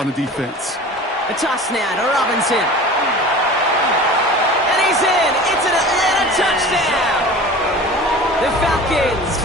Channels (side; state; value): both; normal; correlation 0.38